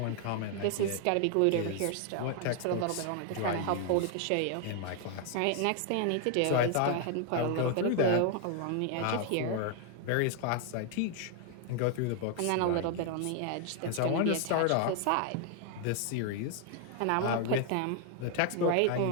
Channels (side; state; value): both; different; correlation 0.00